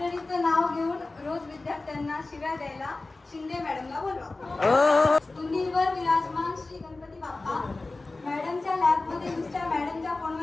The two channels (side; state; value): right; quieter; 3.3 dB